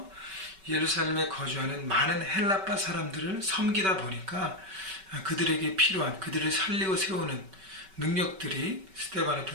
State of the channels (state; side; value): late; left; 5.2 ms